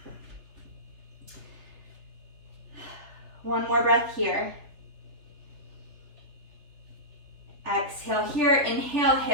One more breath here. Exhale here. Inhale,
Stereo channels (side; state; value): left; late; 3.3 ms